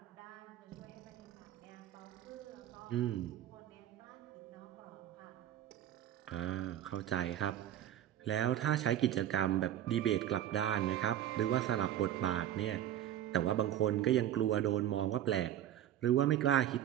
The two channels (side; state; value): left; quieter; 11.7 dB